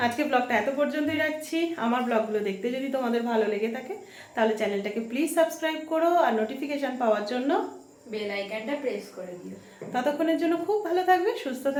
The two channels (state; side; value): identical; both; correlation 1.00